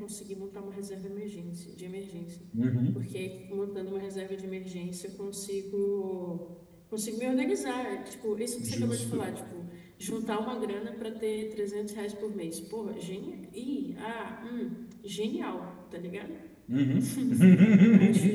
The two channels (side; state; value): both; identical; correlation 1.00